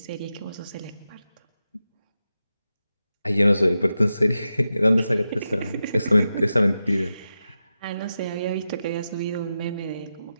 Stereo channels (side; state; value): both; inverted; correlation -0.91